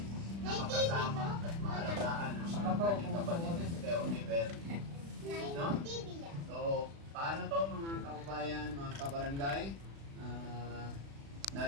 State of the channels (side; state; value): left; late; 36 ms